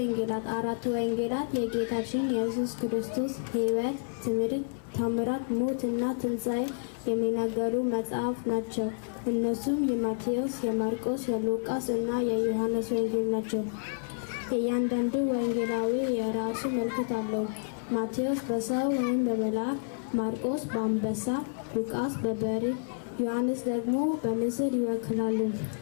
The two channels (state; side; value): silent; right; 58 dB below the other